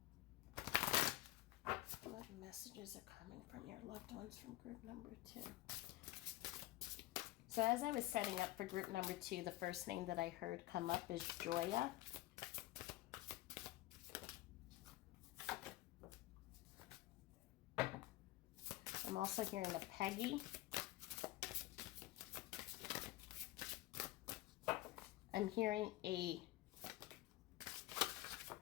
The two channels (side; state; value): right; quieter; 16.9 dB